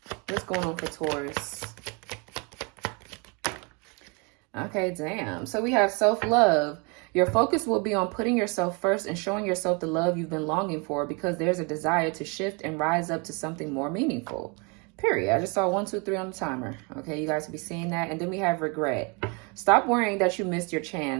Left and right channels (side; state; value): left; quieter; 31.8 dB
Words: What's going on for Taurus? Okay, damn. So we have self-love. Your focus will be on putting yourself first and showing yourself the love you've been longing for, because there's a desire to shift and rise up to something more meaningful. Period. I just saw 1, 2, 3 on the timer. Okay, you guys will be seeing that. And then we have regret. Stop worrying that you missed your